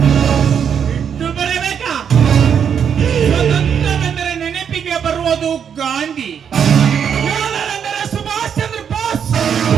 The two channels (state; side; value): quieter; left; 7.8 dB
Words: ಬಿಟ್ಟು ಬರಬೇಕಾ? ಸ್ವತಂತ್ರವೆಂದರೆ ನೆನಪಿಗೆ ಬರುವುದು ಗಾಂಧಿ, ಯೋಧರೆಂದರೆ ಸುಭಾಷ್ ಚಂದ್ರ ಬೋಸ್,